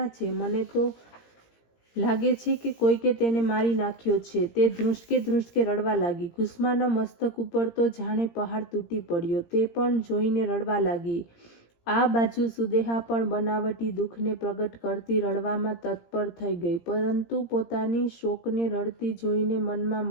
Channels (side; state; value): right; late; 17 ms